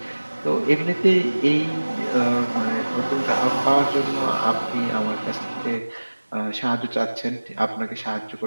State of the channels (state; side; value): inverted; both; correlation -1.00